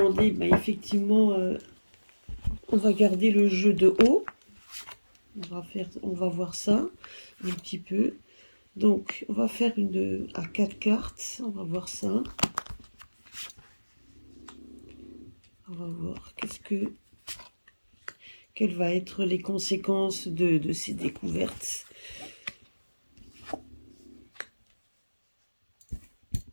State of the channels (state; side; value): inverted; both; correlation -1.00